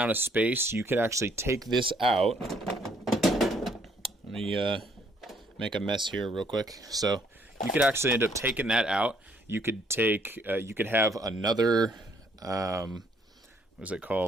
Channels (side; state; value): both; normal; correlation 0.66